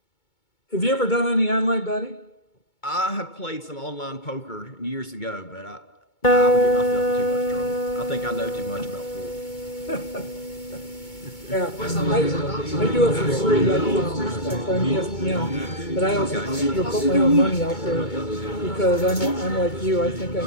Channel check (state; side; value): late; right; 2.2 ms